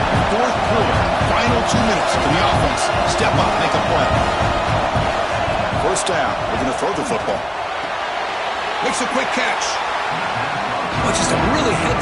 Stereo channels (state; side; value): identical; both; correlation 1.00